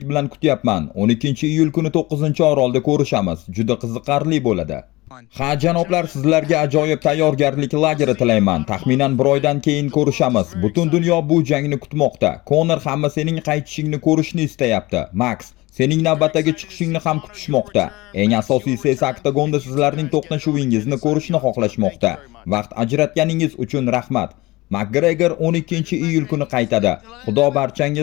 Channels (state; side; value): quieter; right; 20.9 dB